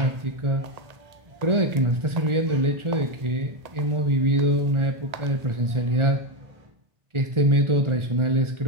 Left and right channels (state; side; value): late; left; 1.4 ms